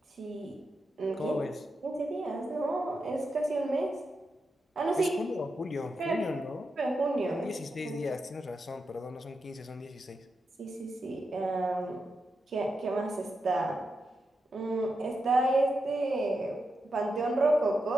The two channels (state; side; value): normal; both; correlation 0.87